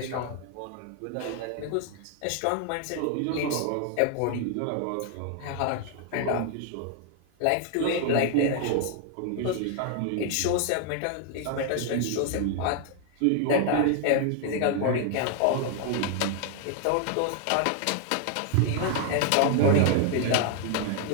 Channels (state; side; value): different; both; correlation 0.00